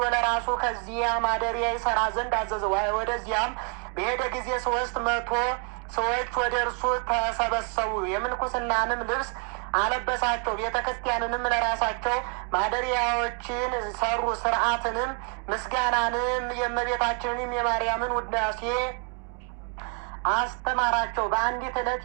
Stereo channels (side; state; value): left; quieter; 39.0 dB